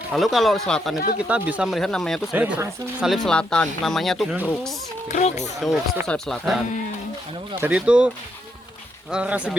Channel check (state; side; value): normal; both; correlation 0.78